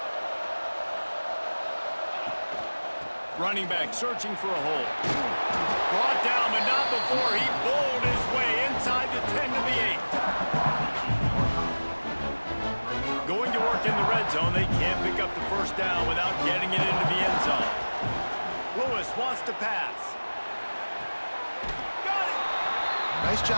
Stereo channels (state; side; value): inverted; both; correlation -1.00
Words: Running back searching for a hole. Brought down, but not before he bowled his way inside the 10 to the 8. Going to work in the red zone, they can't pick up the first down without getting it into the end zone. Lewis wants to pass. Got it! Nice